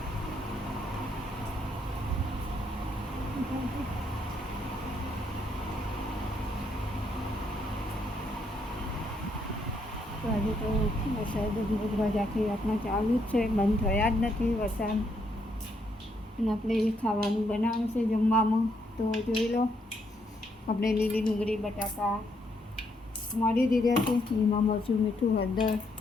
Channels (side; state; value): both; normal; correlation 0.74